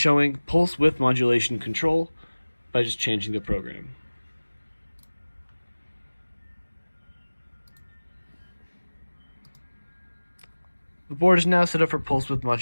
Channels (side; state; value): both; inverted; correlation -1.00